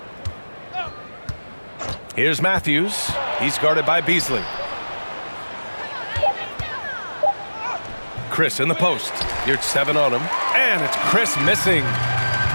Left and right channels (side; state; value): both; inverted; correlation -1.00